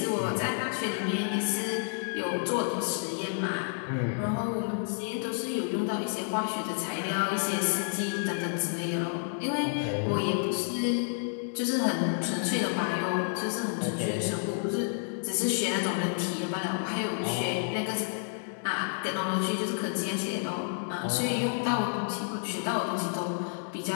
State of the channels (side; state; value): right; silent; digital silence